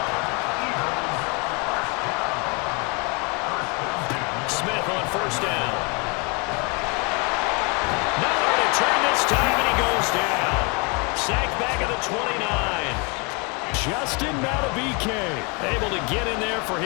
Smith on first down. Nowhere to turn this time, and he goes down. Sacked back at the 29. Justin Madubuike able to get in there for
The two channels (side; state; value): right; quieter; 31.8 dB